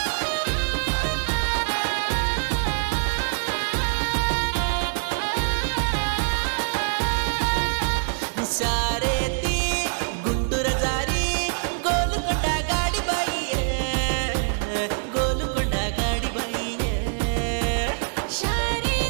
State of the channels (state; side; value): silent; left; 62 dB below the other